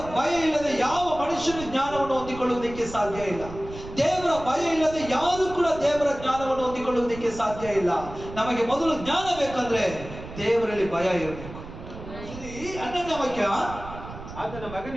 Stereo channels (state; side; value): noise; right; rumble, 13 dB below the sound